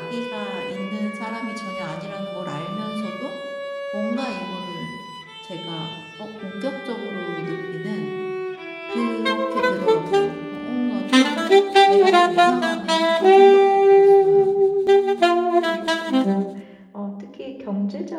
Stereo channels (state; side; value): identical; both; correlation 1.00